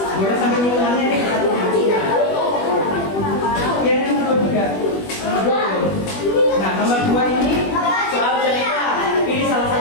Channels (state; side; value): late; right; 21 ms